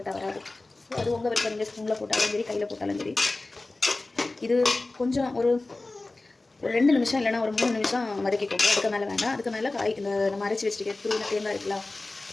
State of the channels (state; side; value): quieter; right; 3.1 dB